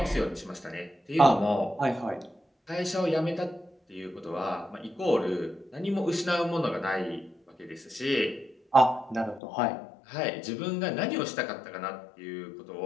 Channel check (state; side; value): drops out; right; at 9.4 s